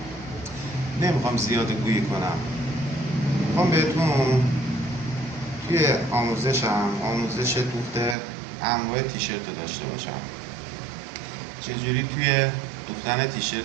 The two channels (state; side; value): drops out; left; at 8.2 s